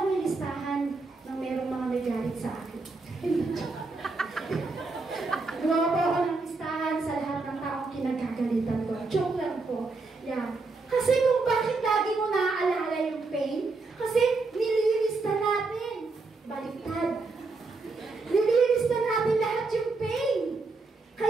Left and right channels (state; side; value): quieter; left; 3.8 dB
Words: yung listahan ng merong mga nagalit sa akin. Gumawa po ako ng listahan sa lahat ng taong kinagkagalitan ko. Joke lang po. Yeah. Kasi kung bakit lagi mo naaalala yung pain, kasi nililista natin. Baliktad. Nililista natin lahat yung pain.